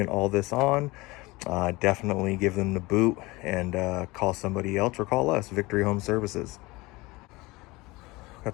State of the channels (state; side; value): quieter; right; 22.3 dB